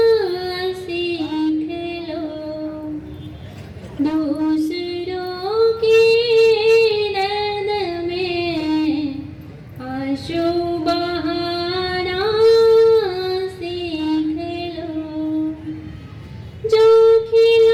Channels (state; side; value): identical; both; correlation 1.00